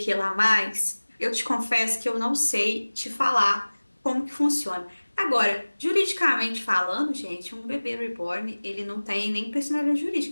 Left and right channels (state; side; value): inverted; both; correlation -1.00